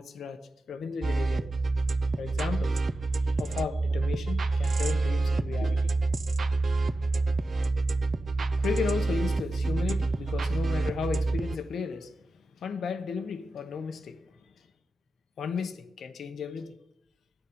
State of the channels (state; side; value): normal; both; correlation 0.91